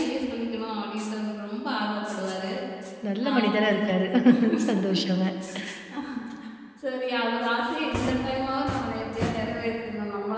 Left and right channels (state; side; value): identical; both; correlation 1.00